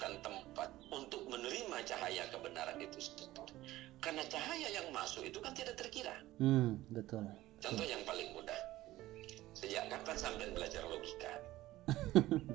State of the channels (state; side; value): quieter; left; 16.3 dB